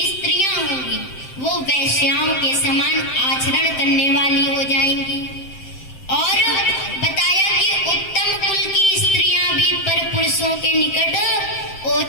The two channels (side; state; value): right; late; 7.7 ms